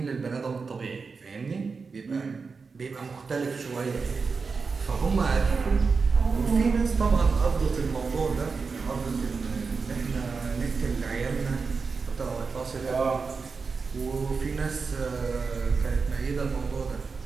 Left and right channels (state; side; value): quieter; left; 4.8 dB